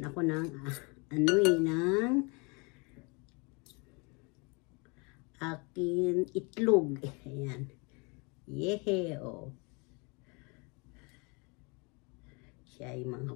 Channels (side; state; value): right; quieter; 31.0 dB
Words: ako ng ng akin itlog. Ayan. Yehe, oh. Siya ay